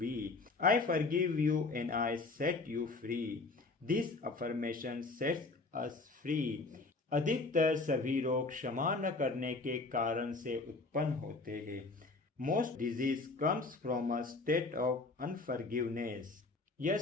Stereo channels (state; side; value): quieter; right; 3.6 dB